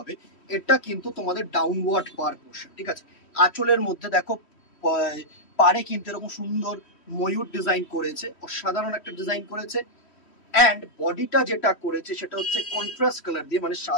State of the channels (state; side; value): late; right; 3.1 ms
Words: এটা কিন্তু তোমাদের ডাউনওয়ার্ড পার পোর্শন। ঠিক আছে, আঁচলের মধ্যে দেখো পারে কিন্তু এরকম সুন্দর ময়ূর ডিজাইন করেছে, অসাধারণ একটা ডিজাইন করেছে। অ্যান্ড বডিটা যেটা করেছে সেটা হচ্ছে কন্ট্রাস্ট কালার দিয়ে, মানে